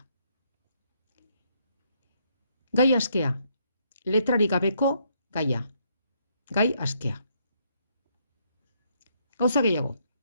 Gai askea, letrarik gabeko gaia. Gai askea. Gauza gehiago.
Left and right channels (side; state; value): both; inverted; correlation -0.72